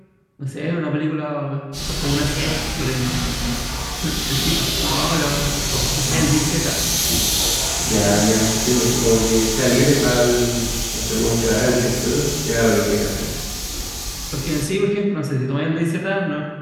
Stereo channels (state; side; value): identical; both; correlation 1.00